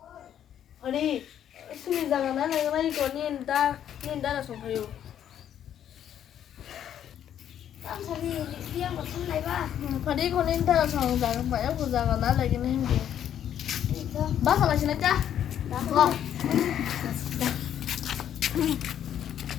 아니 수미자가 나는 이거 닌다라 송파요. 땀 소리 리안 거 탈래 봐. Phadi con nên ta sòng rằng phải áp dụng rằng nó là cái này gì? 이거 Bác là xin cha. 나.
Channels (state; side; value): quieter; right; 10.1 dB